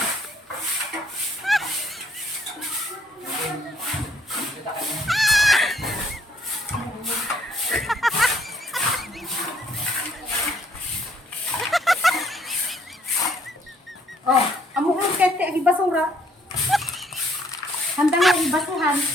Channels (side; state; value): both; normal; correlation 0.66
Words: Oh, amo ko kaya ti agi basura. Handa nga ibasuhan,